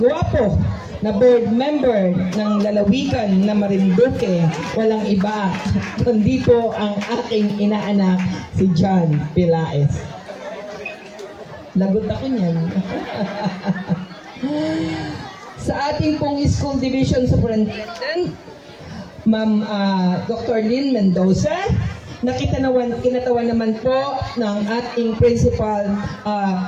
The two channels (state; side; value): identical; both; correlation 1.00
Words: na board member ng lalawigan na Marinduque, walang iba kundi po ang aking inaanak si John Pilaes. Lagot ako niyan. Sa ating pong school division superintendent, Ma'am Dr. Lynn Mendoza, na kinatawan naman po ng ating principal